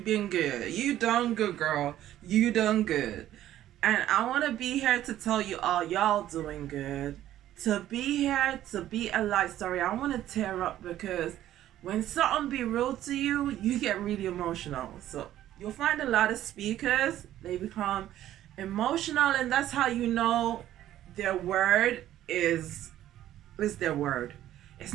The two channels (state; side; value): quieter; left; 12.8 dB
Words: been good. You done good, girl. You done good. And I want to be here to tell you all y'all doing good. To be here, to be alive. Sorry, I want to tear up because when something be real to you, you get really emotional. So you'll find a lot of speakers, they become emotional, and that's how you know their word is their word. It's